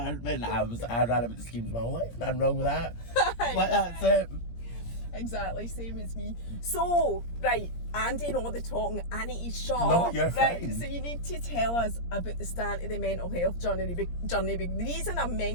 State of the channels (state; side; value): late; right; 17 ms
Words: ran about the schemes my whole life. Nothing wrong with that. Like, that's it. Exactly, same as me. So, right, I'm doing all the talking. I need to shut No, up. you're right, fine. so you need to tell us about the start of the mental health journey. The reason I'm